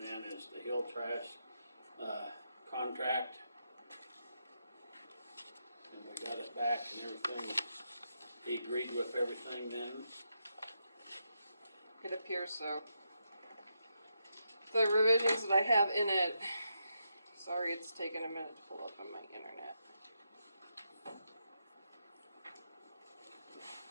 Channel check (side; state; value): both; inverted; correlation -0.82